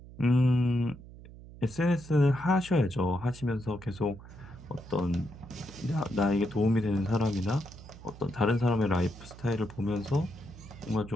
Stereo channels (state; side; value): noise; right; hum, 17 dB below the sound